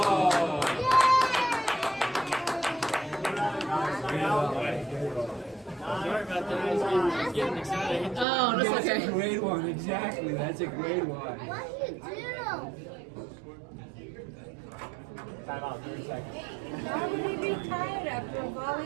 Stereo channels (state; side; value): drops out; left; at 8.2 s